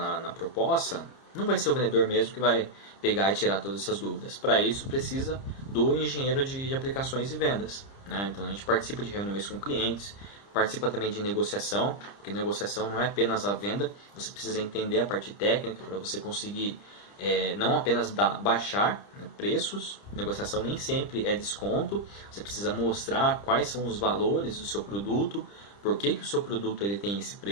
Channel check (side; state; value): right; late; 30 ms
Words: proposta, não vai ser o vendedor mesmo que vai pegar e tirar todas essas dúvidas. Para isso, precisa do engenheiro de aplicações e vendas, né? Então, a gente participa de reuniões com clientes, participa também de negociação, porque negociação não é apenas a venda, você precisa entender a parte técnica para você conseguir não apenas baixar, né, preços. Negociação nem sempre é desconto, você precisa mostrar quais são os valores do seu produto, por que o seu produto ele tem esse